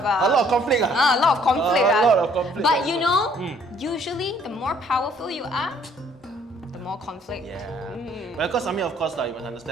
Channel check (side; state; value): both; normal; correlation 0.61